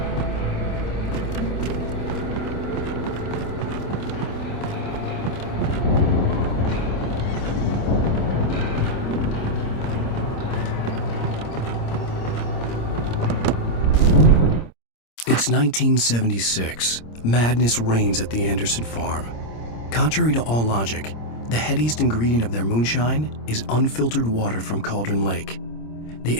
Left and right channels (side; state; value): right; late; 26 ms